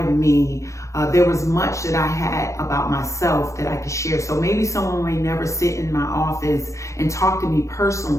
me there was much that I had about myself that I could share. So maybe someone may never sit in my office and talk to me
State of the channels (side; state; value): right; late; 0.15 ms